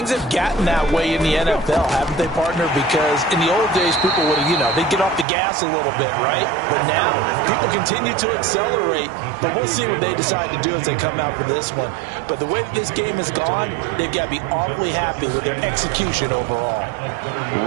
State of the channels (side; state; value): left; drops out; at 5.2 s